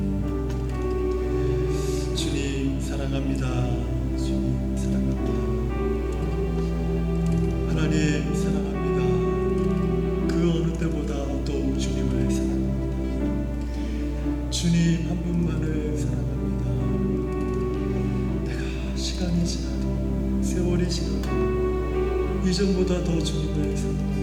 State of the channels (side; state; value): both; identical; correlation 1.00